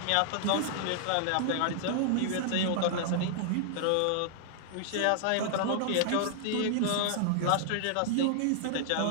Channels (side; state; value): both; different; correlation -0.01